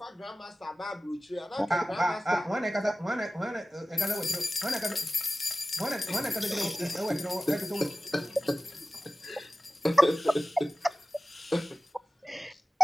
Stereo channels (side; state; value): both; normal; correlation 0.96